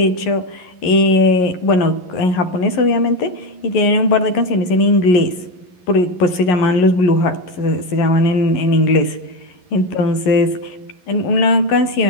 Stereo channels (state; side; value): late; right; 11 ms